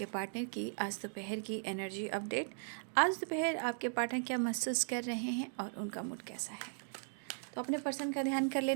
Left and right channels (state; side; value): silent; left; digital silence